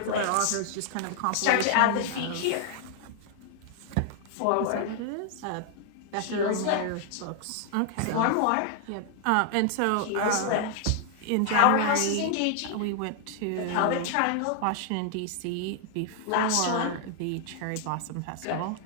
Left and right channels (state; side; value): different; both; correlation 0.00